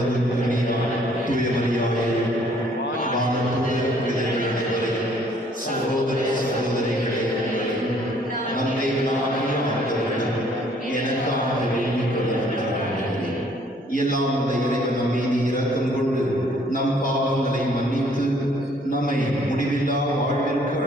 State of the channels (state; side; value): normal; both; correlation 0.61